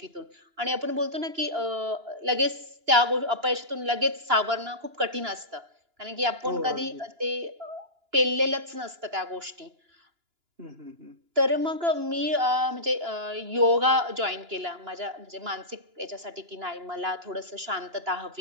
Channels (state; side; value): late; left; 2.9 ms